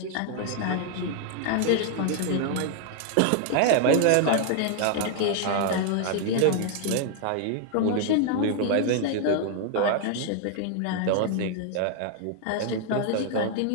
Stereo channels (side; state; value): both; different; correlation 0.00